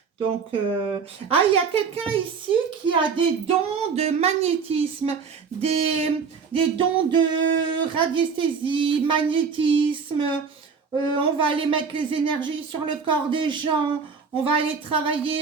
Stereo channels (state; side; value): quieter; left; 5.7 dB